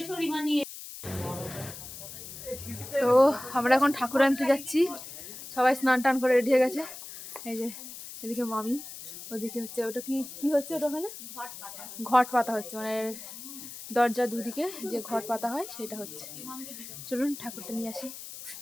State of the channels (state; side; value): noise; left; hiss, 12 dB below the sound